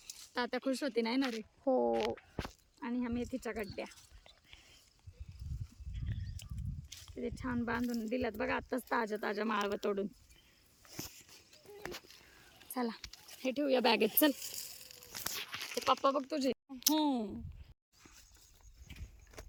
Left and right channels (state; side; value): identical; both; correlation 1.00